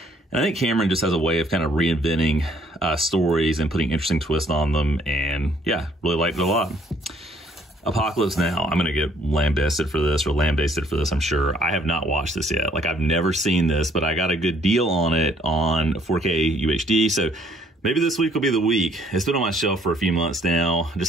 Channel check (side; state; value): both; normal; correlation 0.64